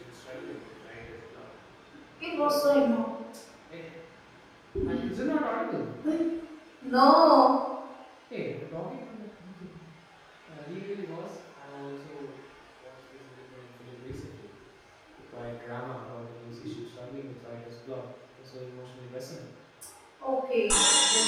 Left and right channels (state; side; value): identical; both; correlation 1.00